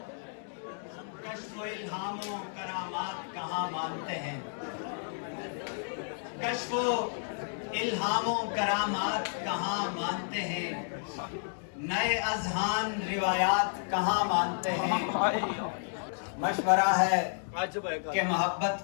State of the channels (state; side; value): silent; right; digital silence